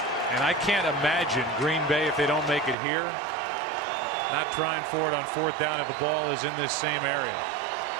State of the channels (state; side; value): drops out; left; at 2.8 s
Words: And I can't imagine Green Bay, if they don't make it here, not trying for it on 4th down if the ball is in this same area.